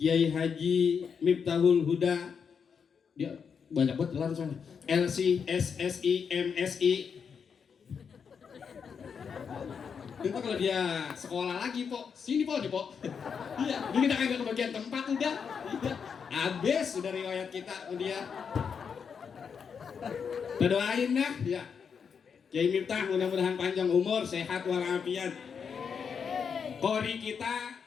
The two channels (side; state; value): right; quieter; 6.5 dB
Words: Haji Miftahul Huda, dia banyak banget langsung LC, SSI, MSI. Itu kalau dia sekolah lagi po, sini po, di po. Iya, ini kita kagak kebagian tempat udah. Iya, habis udah riwayat kita dia. Kita doain dah, ya. Kiai Miftah mudah-mudahan panjang umur, sehat walafiat. Qori kita